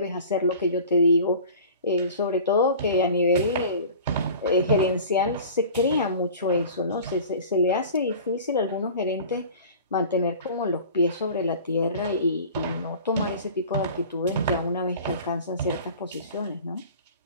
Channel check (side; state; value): both; inverted; correlation -0.42